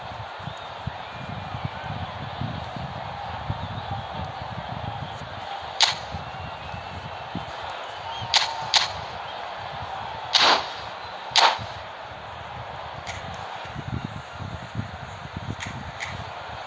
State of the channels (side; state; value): both; identical; correlation 1.00